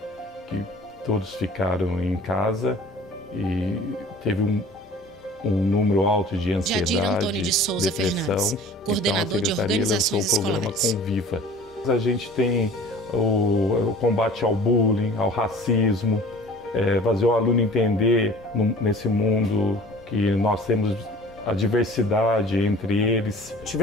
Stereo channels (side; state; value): both; normal; correlation 0.46